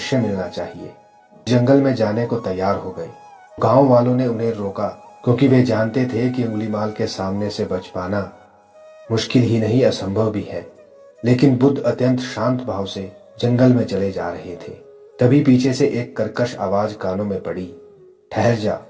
मिलना चाहिए। जंगल में जाने को तैयार हो गए। गांव वालों ने उन्हें रोका क्योंकि वे जानते थे कि अंगुलीमाल के सामने से बच पाना मुश्किल ही नहीं असंभव भी है। लेकिन बुद्ध अत्यंत शांत भाव से जंगल में चले जा रहे थे। तभी पीछे से एक कर्कश आवाज कानों में पड़ी, ठहर जा,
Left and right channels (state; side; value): identical; both; correlation 1.00